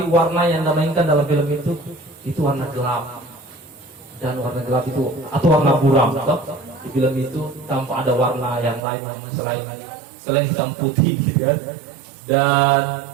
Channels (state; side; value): drops out; left; at 8.8 s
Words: warna yang dimainkan dalam film itu warna gelap, dan warna gelap itu atau warna buram di film itu tanpa ada warna yang lain yang selain hitam putih gitu kan. Dan